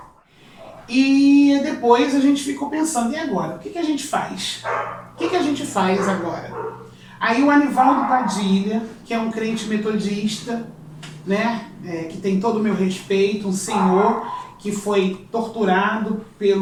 E depois a gente ficou pensando, e agora? O que a gente faz? O que a gente faz agora? Aí o Anivaldo Padilha, que é um crente metodista, que tem todo o meu respeito, um senhor que foi torturado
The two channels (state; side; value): identical; both; correlation 1.00